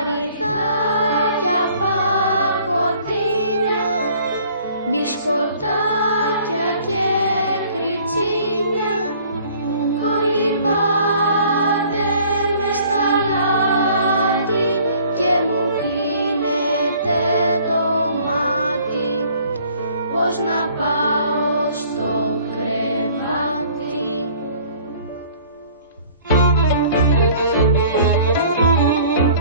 πακοτίνια, μπισκοτάκια και κριτσίνια, κολυμπάτε μες στα λάτι και μου κλείνετε το μάτι. Πώς να πάω στο κρεβάτι.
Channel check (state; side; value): inverted; both; correlation -0.54